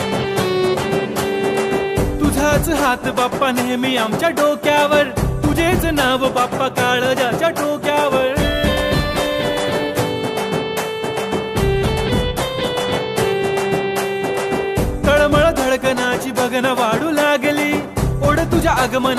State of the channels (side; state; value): both; identical; correlation 1.00